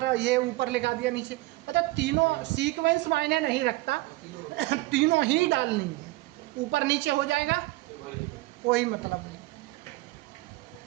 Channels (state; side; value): quieter; left; 20.4 dB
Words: ये ऊपर लिखा दिया नीचे, मतलब तीनों सीक्वेंस मायने नहीं रखता। तीनों ही डालनी है, ऊपर नीचे हो जाएगा कोई मतलब नहीं,